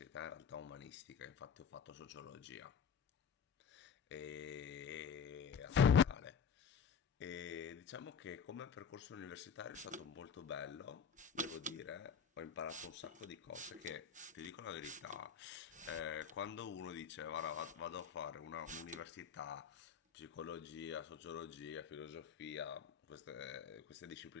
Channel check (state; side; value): quieter; right; 6.9 dB